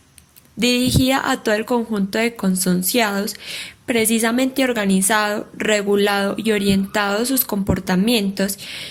dirigida a todo el conjunto de consonciados, precisamente organizado, regulado y orientado sus comportamientos,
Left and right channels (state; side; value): identical; both; correlation 1.00